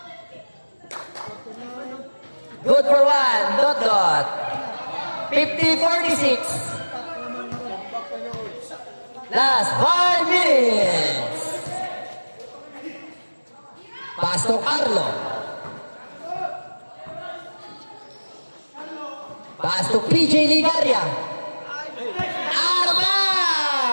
Good for one. Dot. 50-46. Last 5 minutes. Pass to Carlo. Pass to PJ Ligaria. Out of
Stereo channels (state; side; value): inverted; both; correlation -1.00